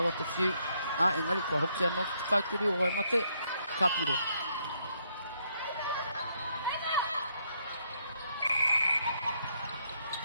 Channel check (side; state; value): both; inverted; correlation -0.73